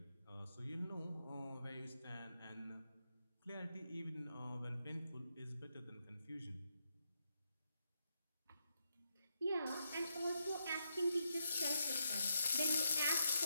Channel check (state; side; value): inverted; both; correlation -0.81